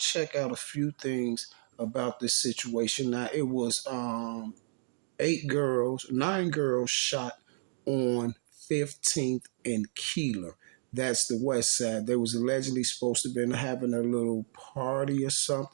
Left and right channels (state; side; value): silent; left; digital silence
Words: out a few things about this situation. Now, it was 9 girls shot on 15th and Keeler. That's the west side. They was allegedly supposed to have been having a little party or